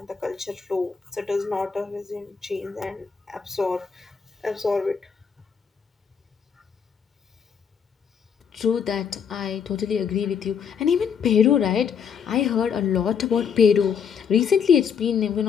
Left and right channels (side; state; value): right; quieter; 6.9 dB